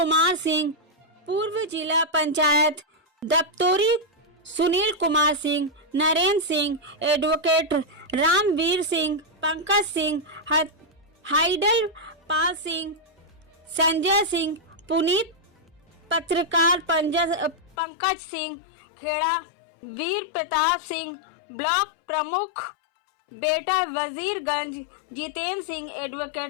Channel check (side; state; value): right; drops out; at 17.8 s